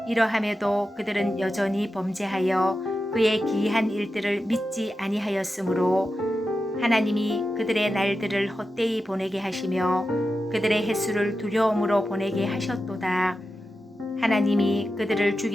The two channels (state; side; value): normal; both; correlation 0.91